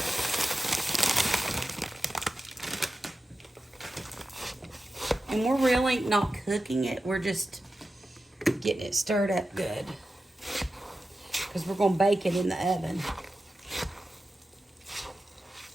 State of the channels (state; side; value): normal; both; correlation 0.92